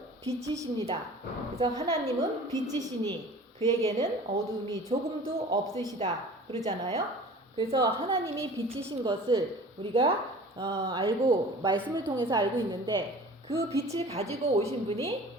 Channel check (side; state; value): both; normal; correlation 0.43